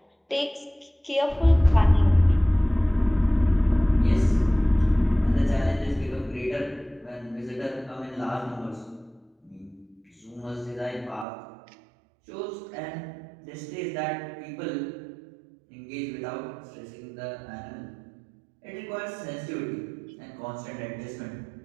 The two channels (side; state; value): left; drops out; at 11.2 s